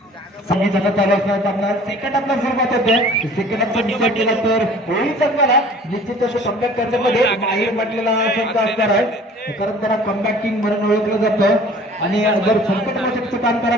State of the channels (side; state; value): both; normal; correlation 0.48